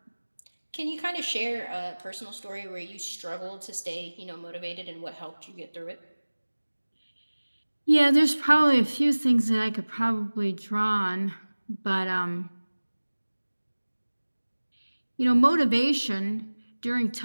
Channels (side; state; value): both; inverted; correlation -1.00